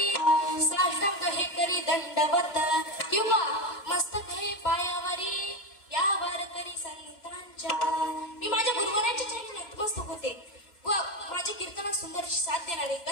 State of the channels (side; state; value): right; late; 3.2 ms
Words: साष्टांग हे करी दंडवत किंवा मस्तक हे पायावरी यावर करी संतांच्या। मी माझ्या गुरुवर्यांच्या चरणी नतमस्तक होते व माझ्या कीर्तनात सुंदर साथ देणारे,